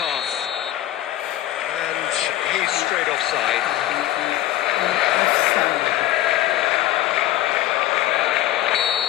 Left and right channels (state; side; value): quieter; right; 14.2 dB